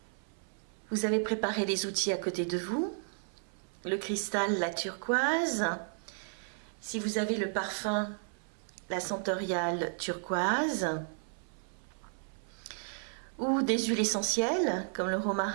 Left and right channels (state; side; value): silent; left; 55 dB below the other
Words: Vous avez préparé les outils à côté de vous, le cristal, la turquoise. Si vous avez le parfum, la sentoriale turquoise, ou des huiles essentielles comme le